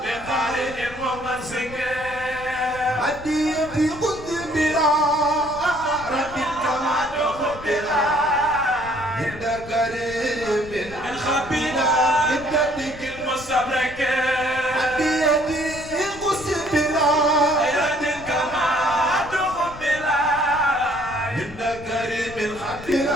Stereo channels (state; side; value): noise; left; rumble, 16 dB below the sound